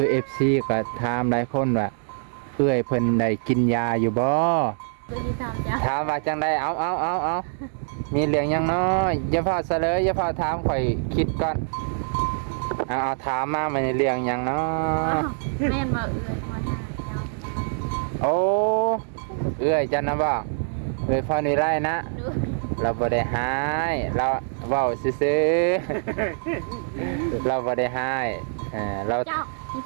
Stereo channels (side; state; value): left; silent; digital silence